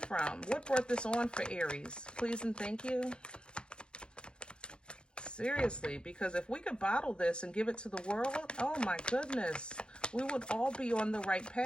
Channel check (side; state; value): right; late; 0.052 ms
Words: What brought this on for Aries? Please and thank you. Seriously, because if we could bottle this and give it to the world, oh my goodness, we would all be on the right